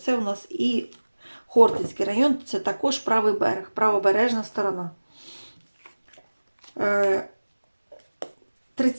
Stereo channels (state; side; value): inverted; both; correlation -1.00